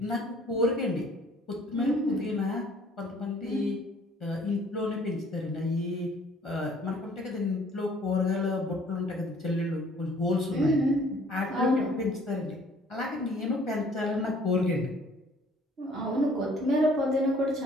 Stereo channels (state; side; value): normal; both; correlation 0.57